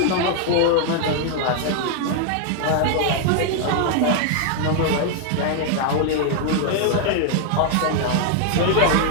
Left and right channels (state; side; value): different; both; correlation 0.00